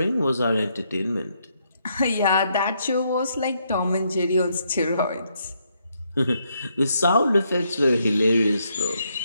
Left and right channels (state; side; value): inverted; both; correlation -0.76